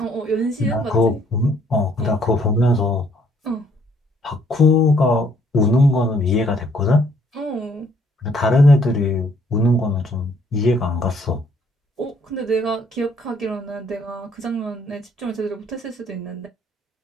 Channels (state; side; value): normal; both; correlation 0.65